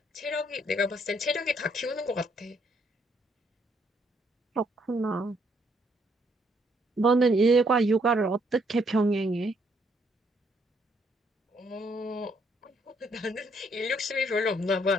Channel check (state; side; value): normal; both; correlation 0.70